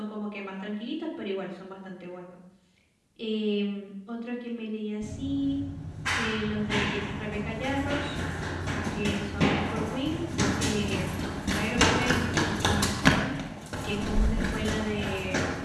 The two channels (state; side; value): identical; both; correlation 1.00